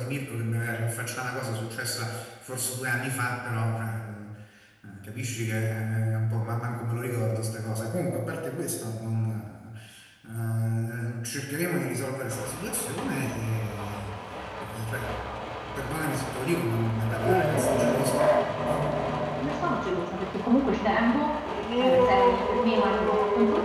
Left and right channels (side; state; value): both; identical; correlation 1.00